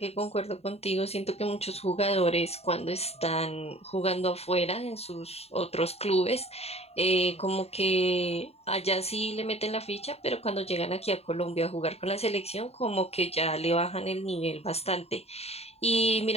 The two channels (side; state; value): right; late; 0.30 ms